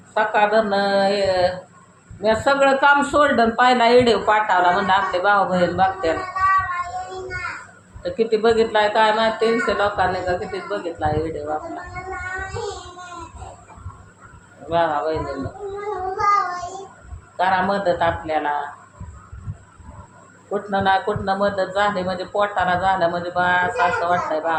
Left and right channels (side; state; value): both; identical; correlation 1.00